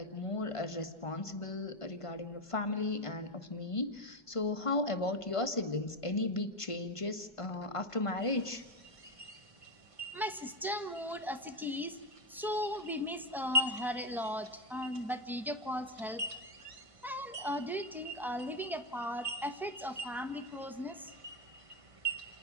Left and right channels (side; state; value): both; normal; correlation 0.08